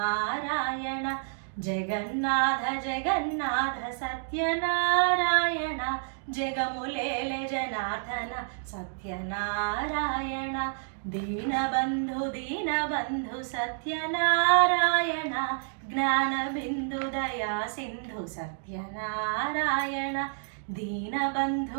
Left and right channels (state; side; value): silent; left; digital silence